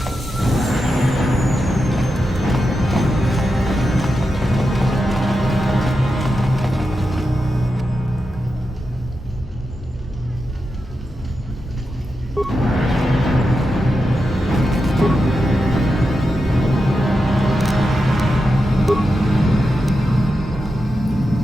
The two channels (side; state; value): both; normal; correlation 0.88